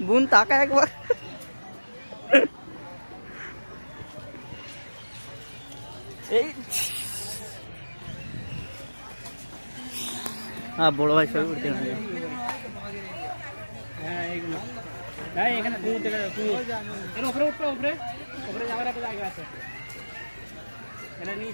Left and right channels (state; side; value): inverted; both; correlation -1.00